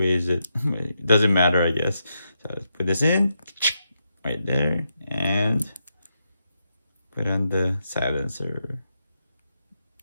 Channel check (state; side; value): inverted; both; correlation -0.84